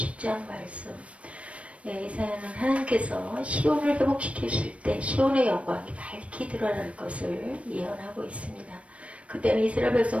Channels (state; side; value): late; left; 0.063 ms